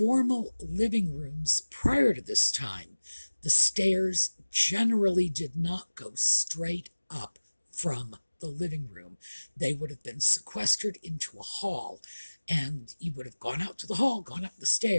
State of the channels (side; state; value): both; inverted; correlation -1.00